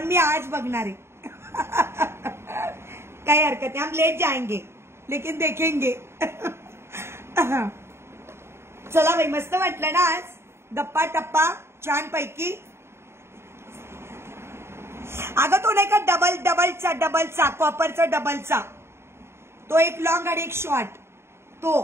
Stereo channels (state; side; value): late; left; 0.12 ms